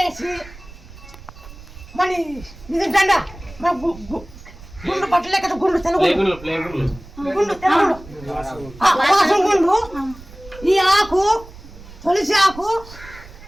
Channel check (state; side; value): noise; right; rumble, 18 dB below the sound